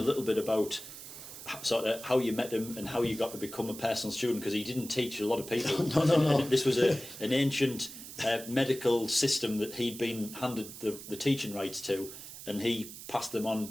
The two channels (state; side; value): noise; right; hiss, 13 dB below the sound